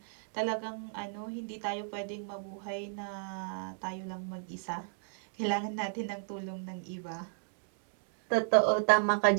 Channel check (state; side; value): silent; left; digital silence